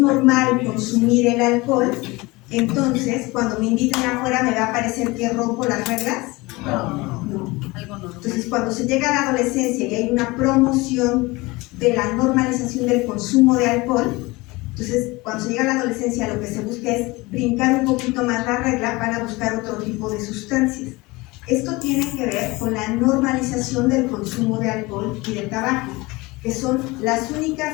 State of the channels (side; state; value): right; quieter; 22.7 dB